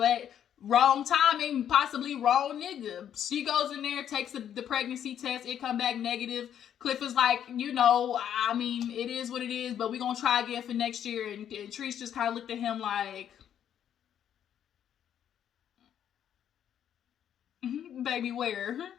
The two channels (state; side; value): quieter; right; 9.6 dB